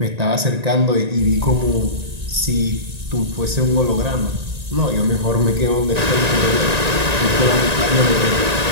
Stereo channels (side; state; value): left; late; 1.9 ms